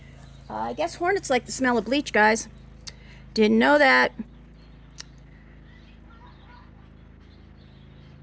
I guess hornets like the smell of bleach, guys. Didn't know that.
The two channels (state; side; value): identical; both; correlation 1.00